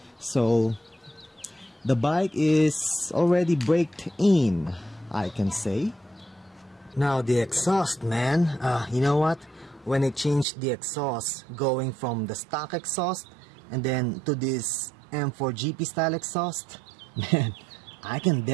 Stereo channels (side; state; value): left; drops out; at 10.5 s